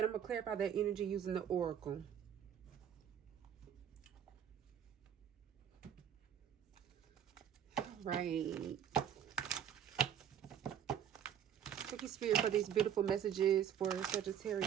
I'm going to clarify that energy using the oracle. Right. Thank you, Spirit, for these beautiful messages for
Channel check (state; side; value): quieter; left; 9.2 dB